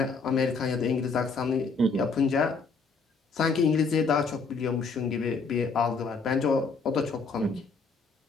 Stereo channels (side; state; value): right; quieter; 4.4 dB